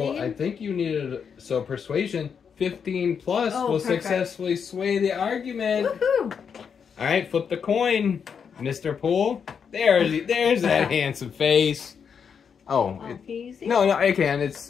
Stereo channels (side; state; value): right; quieter; 6.8 dB